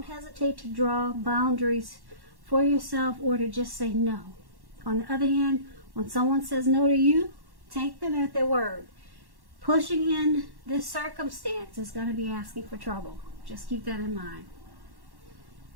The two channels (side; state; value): left; late; 1.1 ms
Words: hesitate to draw boundaries for yourself or to just say no. On the other hand, when someone says no to you, take them at their word. Pushing in this circumstance is going to be asking for trouble. Just keep that in mind.